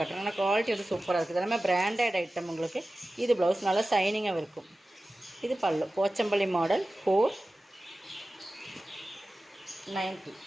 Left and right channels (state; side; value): normal; both; correlation 0.96